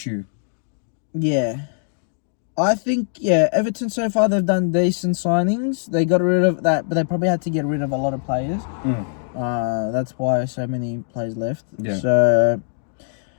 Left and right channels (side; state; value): right; silent; digital silence